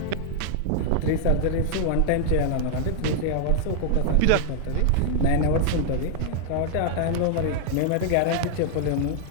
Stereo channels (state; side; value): different; both; correlation 0.00